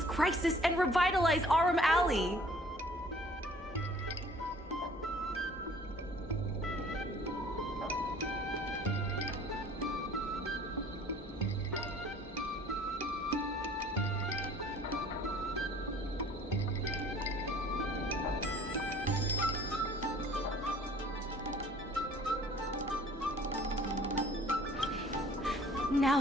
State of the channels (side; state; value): both; normal; correlation 0.53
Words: crisis and revitalize Arum Alley! Now